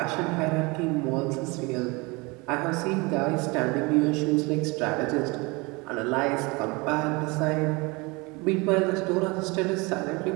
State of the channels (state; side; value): quieter; left; 26.3 dB